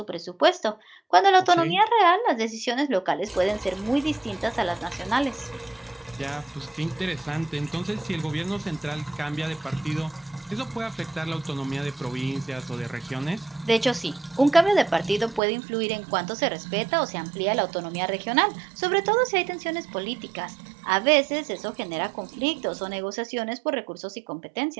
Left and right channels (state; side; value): drops out; left; at 15.4 s